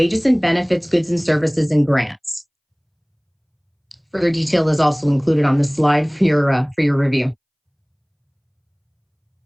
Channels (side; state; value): both; identical; correlation 1.00